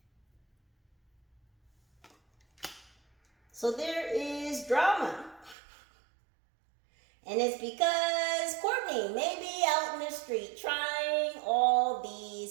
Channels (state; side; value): drops out; left; at 5.6 s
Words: So there is drama. And it's because Courtney may be out in the street trying all